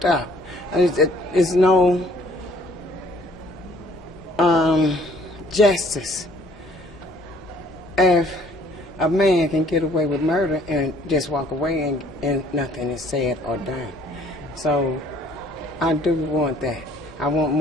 up. It's no justice if a man can get away with murder and just walk away and nothing is said or done. So I do want that. I want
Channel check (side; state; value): both; normal; correlation 0.58